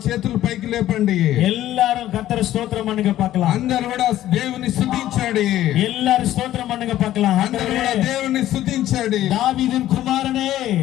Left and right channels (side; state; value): right; quieter; 13.4 dB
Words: చేతులు పైకి లేపండి. எல்லாரும் கர்த்தரை ஸ்தோத்திரம் பண்ணுங்க பார்க்கலாம். అందరూ కూడా దేవుని స్తుతించండి. எல்லாரும் ஸ்தோத்திரம் பண்ணுங்க பார்க்கலாம். అందరూ కూడా దేవుని స్తుతించండి. தாவீதின் குமாரனே,